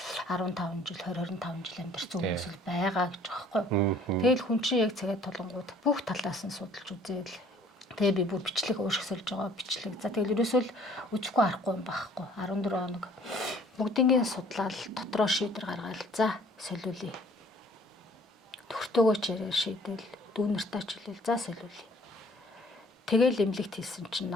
15 жил 20-25 жил амьдарч хүмүүс л байгаа гэж байгаа байхгүй. Тэгэл хүн чинь яг цагаад толонгууд бүх талаас нь судалж үзээл. Тэгээ би бүр бичлэг уушиг сольж байгаа бичлэг. За тэгэл ерөөсөө л үзэхгүй арахгүй юм байхгүй. 14 хоног бүгднийг судлаад дотроо шийдвэр гаргаад за солиулъя. Төгтөөгөө ч яриа шийдэл дүүнэртээ ч хэлээл за солиулъя. Тэгэл эмнэлэгт хийсэн чинь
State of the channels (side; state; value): both; normal; correlation 0.56